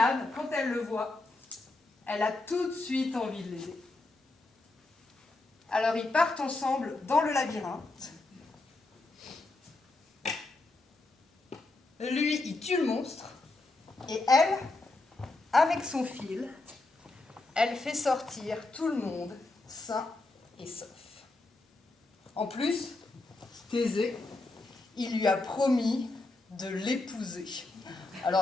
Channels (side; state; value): right; quieter; 3.1 dB